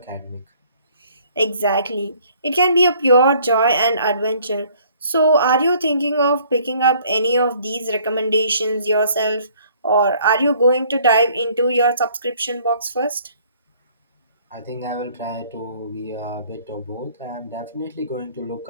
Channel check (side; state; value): both; inverted; correlation -0.58